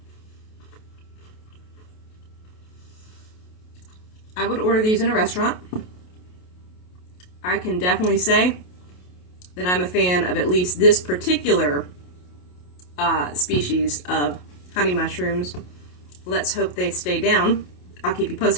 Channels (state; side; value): late; right; 28 ms